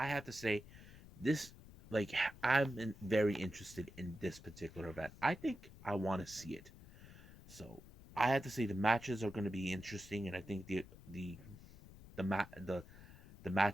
have to say, this, like, very interested in this particular event. I think I want to see it. So I have to say the matches are going to be interesting, and I think the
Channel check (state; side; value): noise; left; rumble, 18 dB below the sound